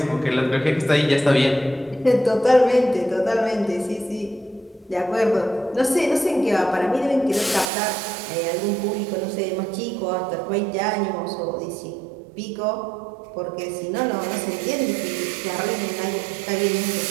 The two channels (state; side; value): drops out; left; at 7.7 s